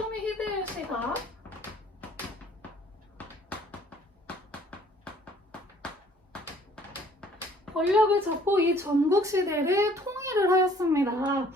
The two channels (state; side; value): normal; both; correlation 0.57